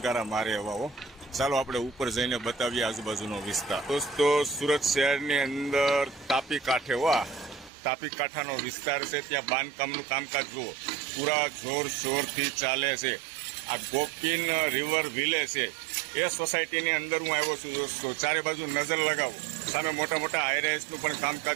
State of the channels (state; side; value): drops out; left; at 7.7 s